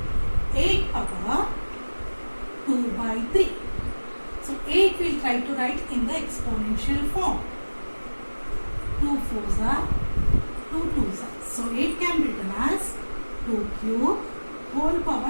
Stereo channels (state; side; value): inverted; both; correlation -1.00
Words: 8 power 2 by 3. So 8 we'll try to write in the exponential form. 2 4s are 2 2s are. So 8 can be written as 2 cube whole